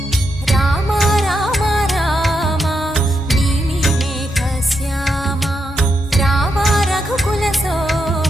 రామ రామ రామ నీలి మేఘ శ్యామ రామ రఘుకుల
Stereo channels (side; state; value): both; normal; correlation 0.83